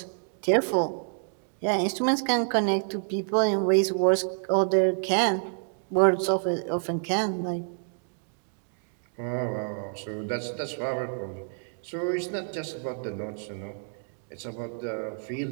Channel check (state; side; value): silent; left; digital silence